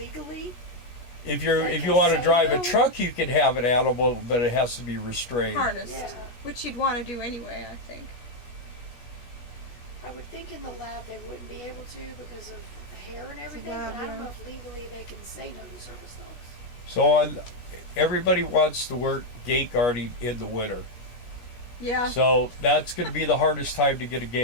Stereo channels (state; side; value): late; right; 17 ms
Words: If you Like want to say drive a no? truck, you can have an animal, but it has to be restrained. Harnessed. Yeah. Which you'd want to do anyway, I think. I would think in the lab they wouldn't be able to because of the hair and everything, lab, but I don't yeah. know if legally they can say no to service dogs. So everybody wants to work gate guarding in the winter. Yeah. So that's going to be the hardest time to get a